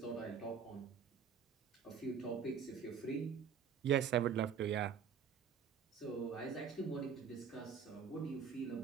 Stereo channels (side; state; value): left; quieter; 6.9 dB